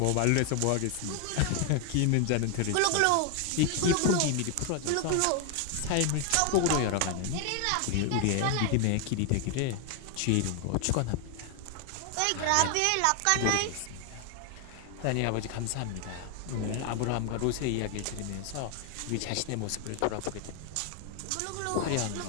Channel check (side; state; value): both; different; correlation 0.01